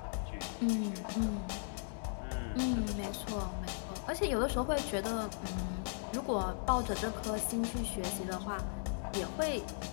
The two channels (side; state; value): right; silent; digital silence